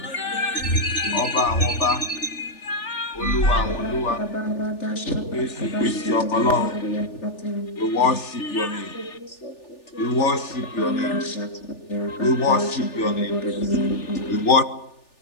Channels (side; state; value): right; late; 3.4 ms